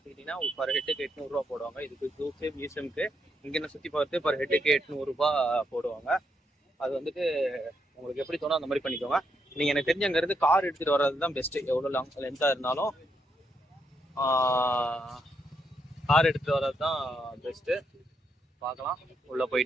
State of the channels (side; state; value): both; normal; correlation 0.79